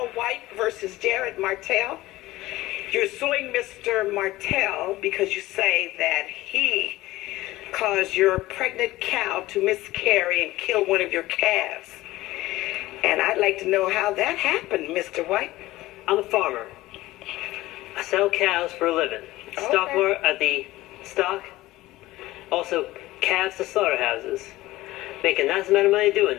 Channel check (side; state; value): right; quieter; 17.7 dB